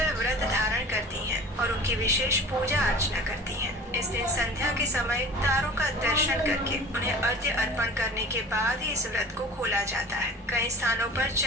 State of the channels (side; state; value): both; normal; correlation 0.41